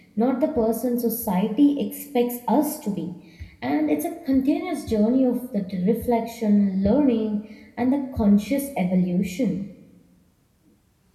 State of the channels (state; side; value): identical; both; correlation 1.00